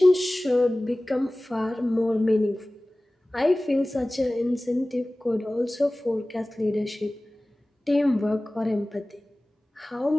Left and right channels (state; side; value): normal; both; correlation 0.98